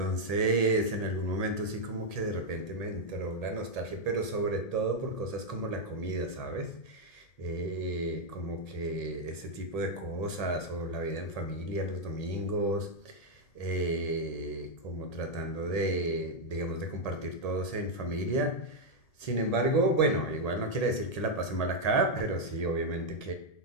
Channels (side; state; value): right; late; 1.8 ms